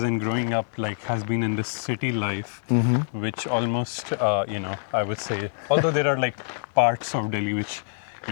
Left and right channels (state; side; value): silent; right; digital silence